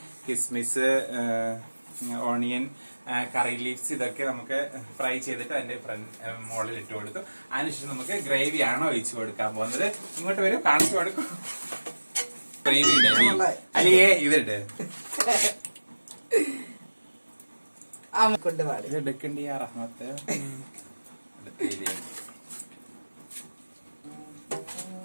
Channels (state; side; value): inverted; both; correlation -1.00